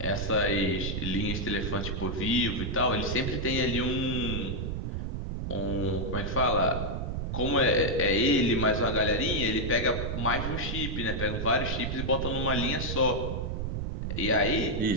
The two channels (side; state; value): right; noise; rumble, 3 dB below the sound